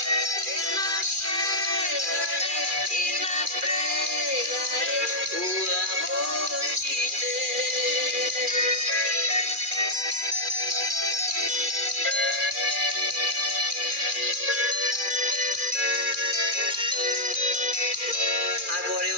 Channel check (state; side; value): late; left; 2.4 ms